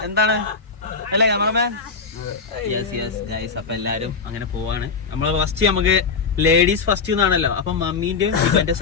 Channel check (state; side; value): quieter; right; 5.0 dB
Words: എന്താണ് അല്ലേ ക്യാമറമാൻ? Yes guys. അപ്പൊ എല്ലാരും അങ്ങനെ പോവാണ്. നമ്മള് ഫസ്റ്റ് നമുക്ക് ലേഡീസ് ഫസ്റ്റ് എന്നാണല്ലോ, അപ്പൊ മമ്മീന്റെയും ഇവന്റെ